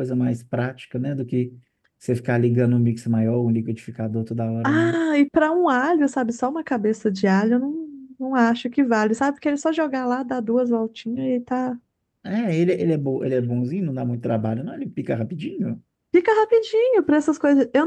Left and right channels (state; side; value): identical; both; correlation 1.00